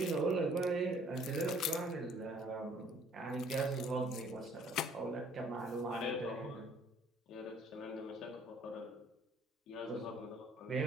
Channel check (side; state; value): both; normal; correlation 0.58